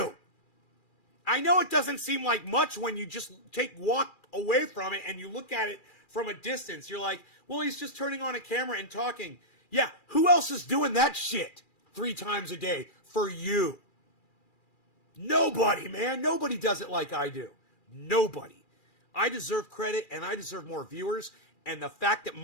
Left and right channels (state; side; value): late; right; 2.4 ms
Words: I know it doesn't seem like much when you just walk away from it and you look at it from a distance. You're like, well, he's just turning on a camera and talking. Yeah, who else is doing that shit 3 times a day for you? Nobody, man. Nobody does it like I do. Nobody. I deserve credit and I deserve more viewers. And the fact that